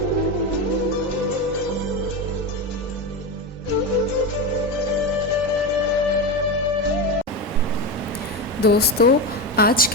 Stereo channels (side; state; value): both; normal; correlation 0.17